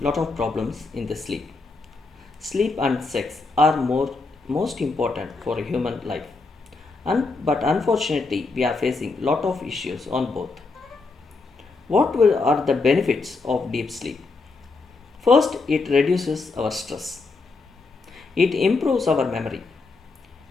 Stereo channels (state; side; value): quieter; right; 3.9 dB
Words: of problems in the sleep. Sleep and sex are most important for a human life. But unfortunately we are facing lot of issues on both. Are the benefits of deep sleep? First, it reduces our stress. It improves our memory.